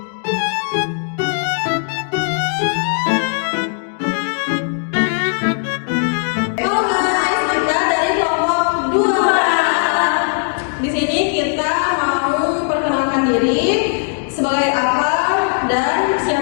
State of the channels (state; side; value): silent; right; 60 dB below the other